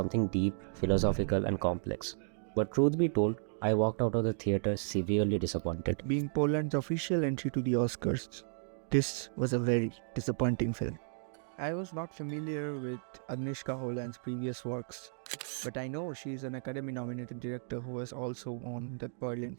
deep, philosophical, and complex. But truth be told, I walked out of the theater severely disappointed. Being Poland's official entry to the Oscars, this was a very disappointing film. I was not familiar with Agnieszka Holland's previous works, but I know she is an Academy-nominated director who has also won the Berlin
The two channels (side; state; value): left; silent; digital silence